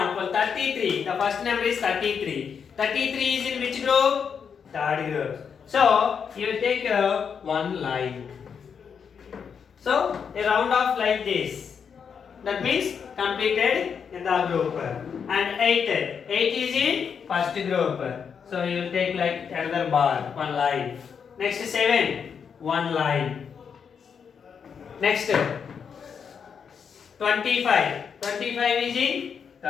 33. The first number is 33. 33 is in which group? Third group. So you will take one line. So a round off like this. That means completed in the group. And 8 is in first group. So you will take like another bar, one line. Next 7, one line. Next 25. 25 is in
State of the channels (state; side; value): quieter; right; 6.8 dB